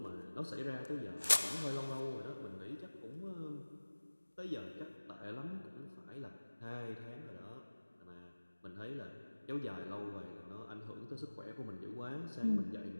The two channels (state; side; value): inverted; both; correlation -1.00